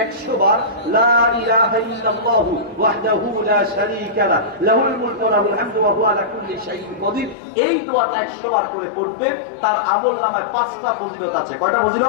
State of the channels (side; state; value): right; drops out; at 7.4 s